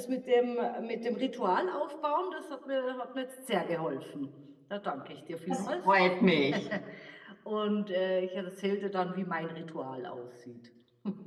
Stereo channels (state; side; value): identical; both; correlation 1.00